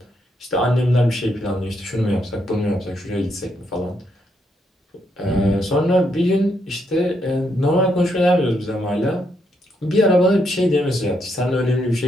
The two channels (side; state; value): both; normal; correlation 0.77